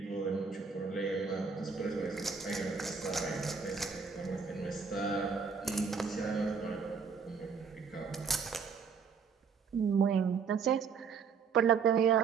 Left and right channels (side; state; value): left; quieter; 5.7 dB